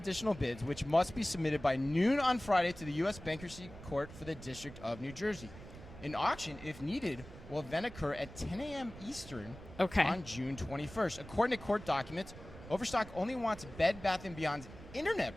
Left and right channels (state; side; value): noise; right; rumble, 15 dB below the sound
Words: bids, which must be submitted by noon on Friday to the U.S. Bankruptcy Court for the District of New Jersey. An auction, if needed, will then occur at 10 a.m. Eastern on June 21st. According to court documents, Overstock only wants Bed Bath & Beyond's internet